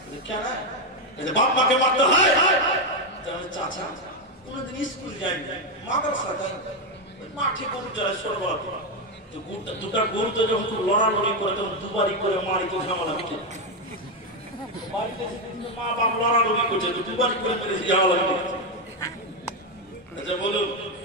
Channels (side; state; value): both; normal; correlation 0.06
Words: কেন বাপ মাকে মারতে হয়? চাচা কোনদিন স্কুল যায়নি, মাদ্রাসা যায়নি, মাঠে গরু চড়ায় ছোটবেলা দুটা গরু তো যখন খুব লড়ালড়ি করে তখন দুবারই করে মারি তো ঝামেলা মিটে। মা বাপ লড়ালড়ি করছে দুবারই করে মেরে ঝামেলা মিটে। আচ্ছা বলুন,